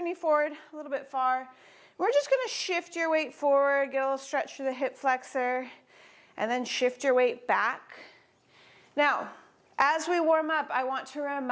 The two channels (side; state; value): both; identical; correlation 1.00